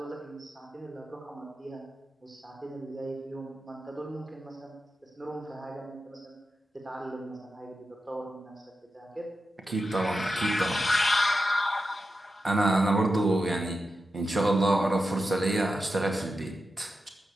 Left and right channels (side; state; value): both; normal; correlation 0.90